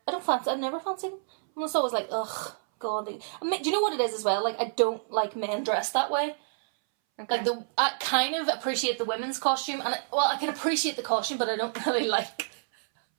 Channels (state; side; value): silent; left; 59 dB below the other